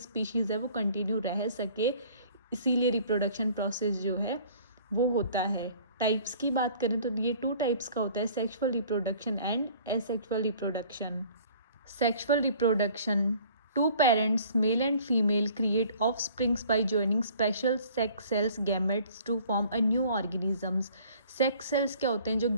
है वो कंटिन्यू रह सके, इसीलिए रिप्रोडक्शन प्रोसेस जो है वो होता है। टाइप्स की बात करें तो ये 2 टाइप्स का होता है, sexual reproduction and asexual reproduction. Sexual reproduction, two parents male and female create offsprings by joining special sex cells gametes to form a new organisms. Sex cells क्या होते हैं? जो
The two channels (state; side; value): inverted; both; correlation -0.52